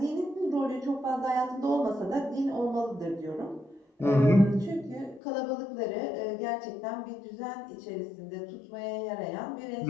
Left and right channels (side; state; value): right; drops out; at 5.2 s